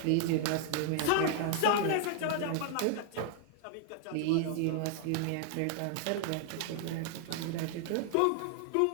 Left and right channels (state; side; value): different; both; correlation 0.00